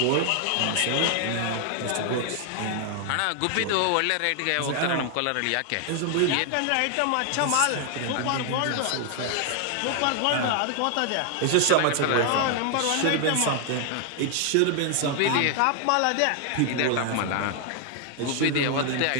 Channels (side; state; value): both; different; correlation 0.00